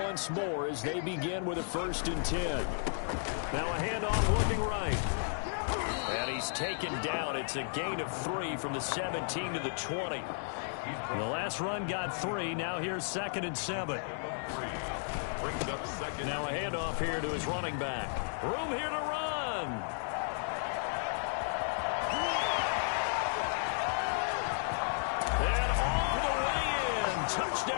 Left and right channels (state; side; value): silent; right; digital silence